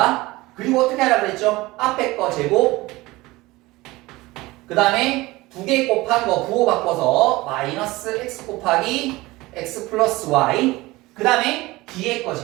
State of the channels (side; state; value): left; quieter; 20.3 dB